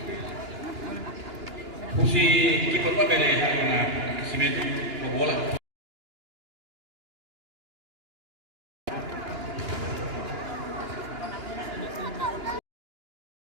Fungsi kiper apa beda ya karena simetri bola.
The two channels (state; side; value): late; left; 2.9 ms